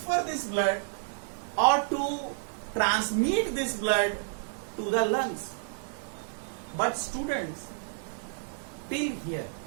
this blood or to transmit this blood to the lungs. But students, till here,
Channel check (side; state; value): left; silent; digital silence